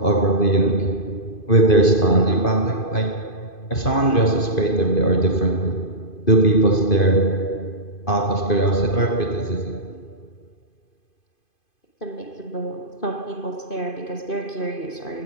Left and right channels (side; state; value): right; late; 2.5 ms